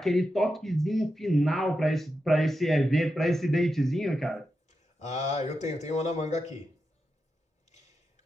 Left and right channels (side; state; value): both; normal; correlation 0.88